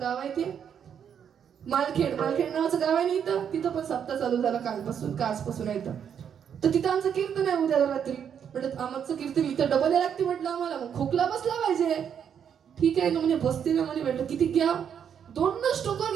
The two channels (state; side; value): quieter; left; 8.2 dB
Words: गाव आहे ते, मालखेड नावाचं गाव आहे ना इथं, तिथं पण सप्ताह चालू झाला आजपासून आहे तर तिथं आमचं कीर्तन आहे उद्या रात्री. म्हटलं आमचं कीर्तन इथं डबल यायला लागते म्हटलं आम्हाला, मग खोकला बसला पाहिजे. ठीक आहे ना म्हणे, बसते ना म्हणे. म्हटलं किती घ्या? 2 स्टोकर